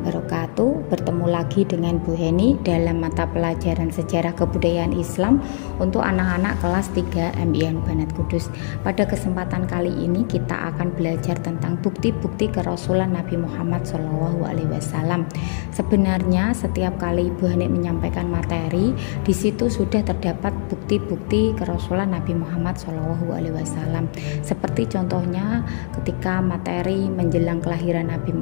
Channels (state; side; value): silent; right; 60 dB below the other